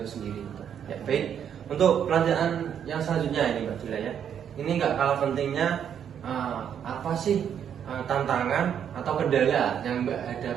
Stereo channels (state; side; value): quieter; left; 8.7 dB